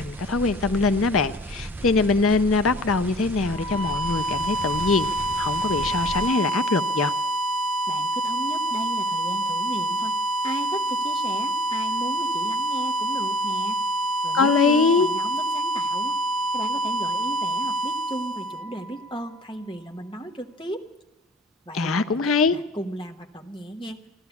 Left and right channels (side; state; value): both; normal; correlation 0.48